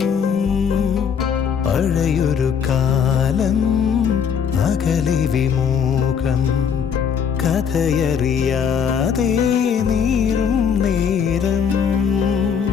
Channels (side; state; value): right; quieter; 7.1 dB